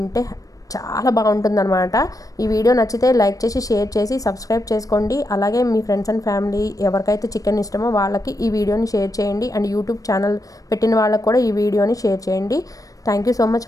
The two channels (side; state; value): right; late; 0.17 ms